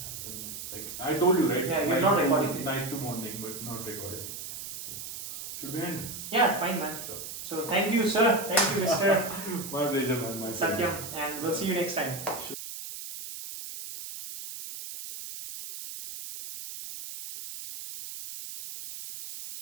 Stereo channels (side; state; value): right; noise; hiss, 9 dB below the sound